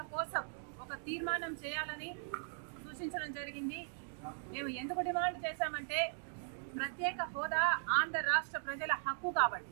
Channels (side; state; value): left; silent; digital silence